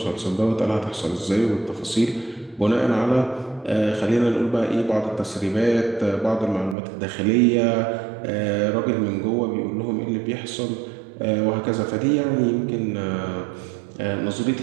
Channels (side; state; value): left; drops out; at 6.8 s